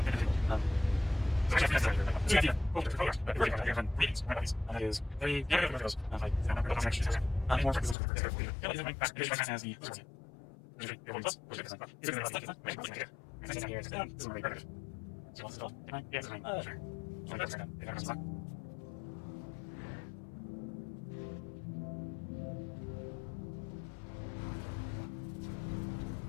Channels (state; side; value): drops out; right; at 8.0 s